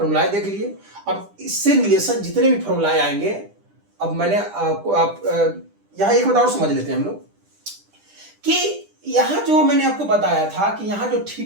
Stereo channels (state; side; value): late; left; 10 ms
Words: देख लिए। अब इससे रिलेशन जितने भी फॉर्मुलाएं आएंगे, अब मैंने आप यहाँ एक बात और समझ लेते हैं हम लोग कि यहाँ जो मैंने आपको बताया था कि यहाँ जो